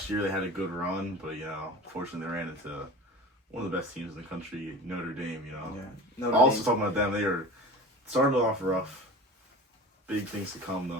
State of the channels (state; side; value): normal; both; correlation 0.35